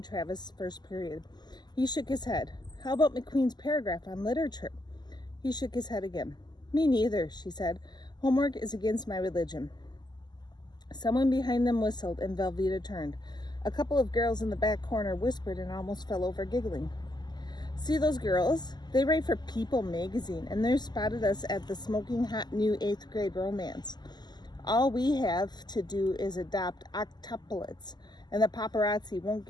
Travis' first period. He shook his head. How about McQueen's paragraph on literature? He shook his head again. Me neither, she said. Homework is against my religion. Someone behind them whistled, and Velveeta turned. A couple of girls in the back corner whispered and almost fell over giggling. See those girls? They write for People magazine, and they spotted us at the smoking hot new 8th grade romance. All we have to do is adopt octuplets, and the paparazzi won't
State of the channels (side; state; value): right; late; 0.21 ms